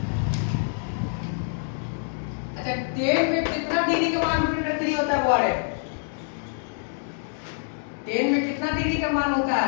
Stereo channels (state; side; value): silent; right; digital silence